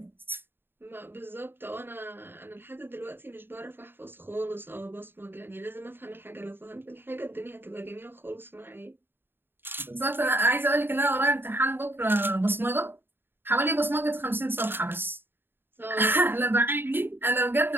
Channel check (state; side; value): late; left; 0.10 ms